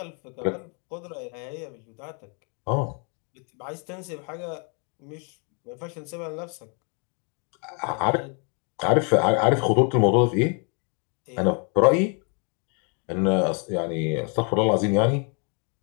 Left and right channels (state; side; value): quieter; right; 38.2 dB